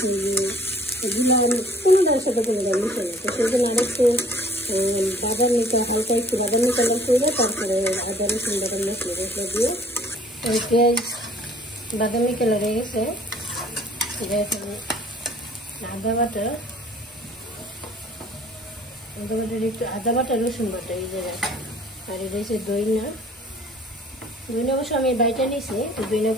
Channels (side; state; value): both; normal; correlation 0.55